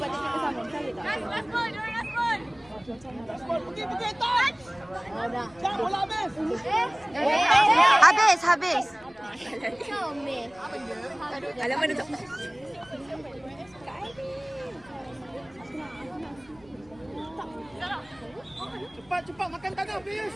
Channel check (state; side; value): noise; left; rumble, 26 dB below the sound